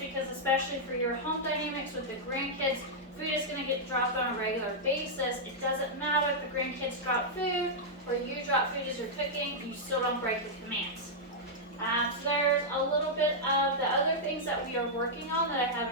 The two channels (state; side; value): normal; both; correlation -0.07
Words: especially for your home dynamics with the grandkids, food is going to get dropped on a regular basis. It doesn't matter if the grandkids drop food or you drop food as you're cooking, you still don't break the commands. So there's a little bit of the other things that we are working on that I